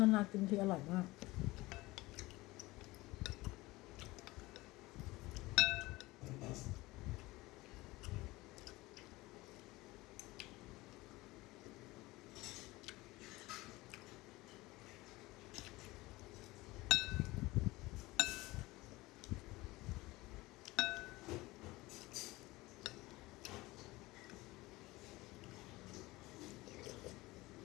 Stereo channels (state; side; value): quieter; right; 20.5 dB